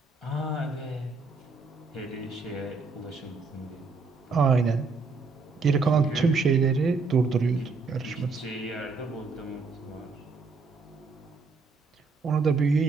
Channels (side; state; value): left; quieter; 4.2 dB